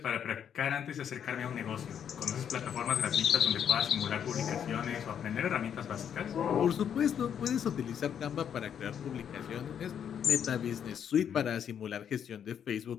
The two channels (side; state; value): right; quieter; 8.6 dB